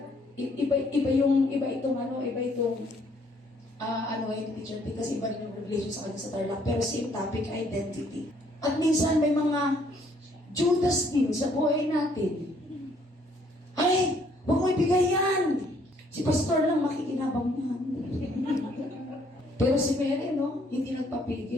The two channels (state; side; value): normal; both; correlation 0.65